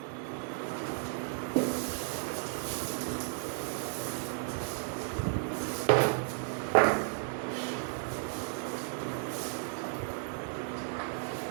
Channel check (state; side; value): silent; left; digital silence